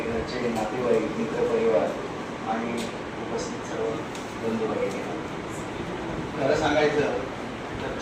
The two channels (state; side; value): identical; both; correlation 1.00